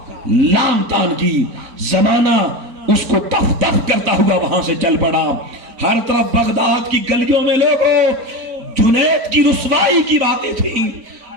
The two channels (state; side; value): late; left; 4.4 ms